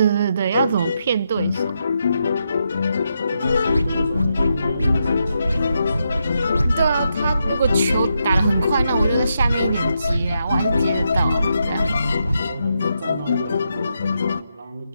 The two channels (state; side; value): inverted; both; correlation -0.83